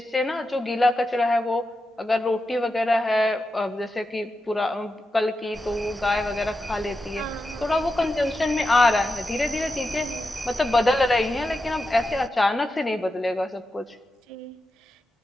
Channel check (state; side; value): normal; both; correlation 0.89